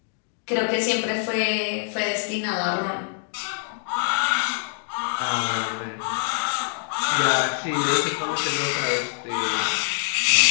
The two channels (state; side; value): silent; right; digital silence